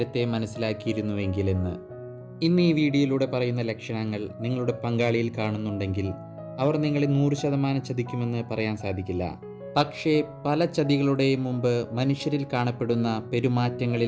മനസ്സിലാക്കിയിരുന്നുവെങ്കിൽ എന്ന്. ഇന്ന് ഈ വീഡിയോയിലൂടെ പറയുന്ന ലക്ഷണങ്ങൾ നിങ്ങളുടെ പങ്കാളിയിൽ കാണുന്നുണ്ടെങ്കിൽ അവർ നിങ്ങളെ 100% ചതിക്കുമെന്ന് പറയാൻ സാധിക്കില്ല. പക്ഷേ പല ചതികളുടെയും മുമ്പ് മനുഷ്യരിൽ കാണപ്പെടുന്ന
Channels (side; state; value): both; identical; correlation 1.00